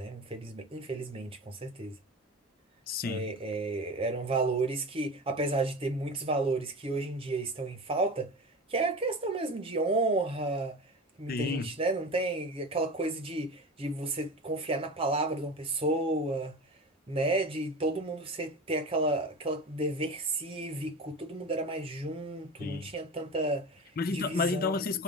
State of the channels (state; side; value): normal; both; correlation 0.30